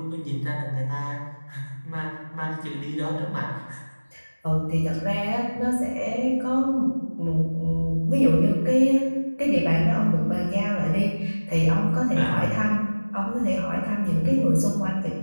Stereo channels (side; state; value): both; inverted; correlation -1.00